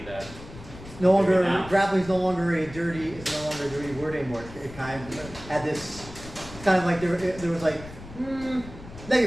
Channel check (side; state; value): left; noise; rumble, 15 dB below the sound